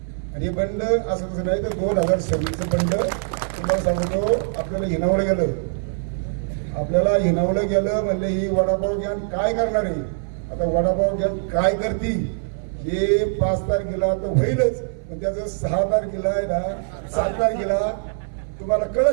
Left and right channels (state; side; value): silent; left; 64 dB below the other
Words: आणि हे बंड असं तसं नाही तर 2026चं बंड तुम्हाला सांगतो. आपल्याला हिनावलं गेलं म्हणले ही वडापाव घ्या काय करणार आहे. आता वडापाव घ्या काय करती हे 5 तारखेला तर होईलच, पण त्याचं 6 तारखेला आहे ना 7 तारखेला तुम्हाला